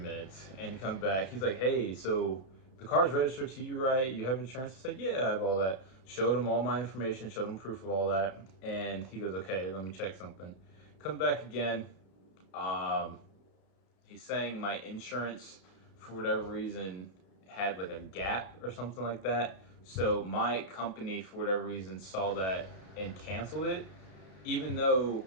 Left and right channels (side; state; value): right; late; 32 ms